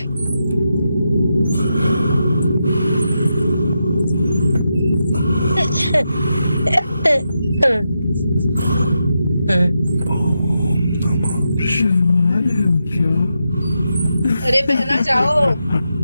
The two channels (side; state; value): both; inverted; correlation -0.86